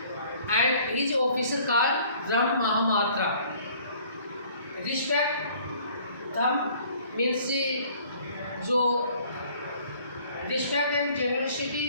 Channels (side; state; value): both; inverted; correlation -0.55